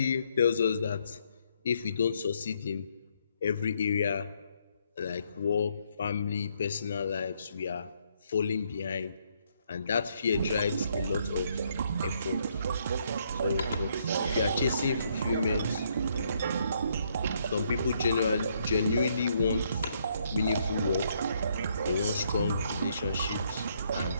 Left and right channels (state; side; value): inverted; both; correlation -0.72